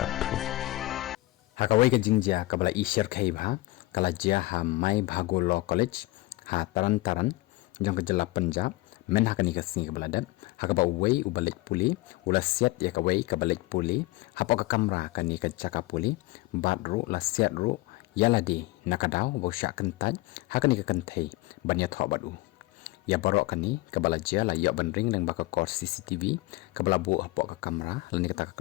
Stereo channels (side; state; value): right; quieter; 20.2 dB